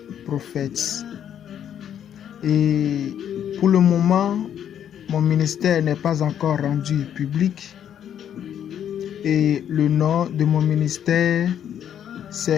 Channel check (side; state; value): right; quieter; 9.5 dB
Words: prophète. Et pour le moment, mon ministère n'est pas encore rendu public. Et le nom de mon ministère,